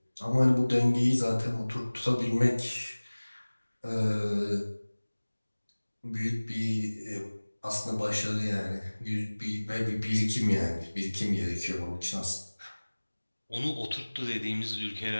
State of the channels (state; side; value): inverted; both; correlation -1.00